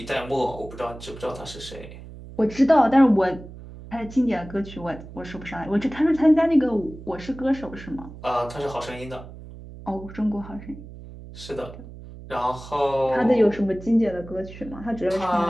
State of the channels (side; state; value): right; noise; hum, 15 dB below the sound